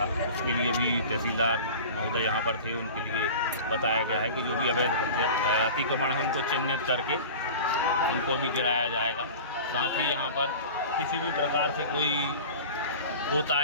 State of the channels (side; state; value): both; inverted; correlation -0.37